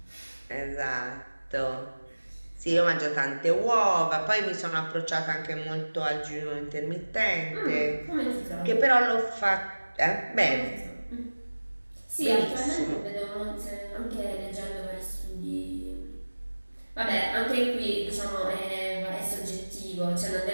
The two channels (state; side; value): inverted; both; correlation -1.00